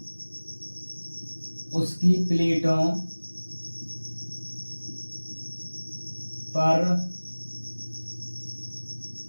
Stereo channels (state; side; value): inverted; both; correlation -1.00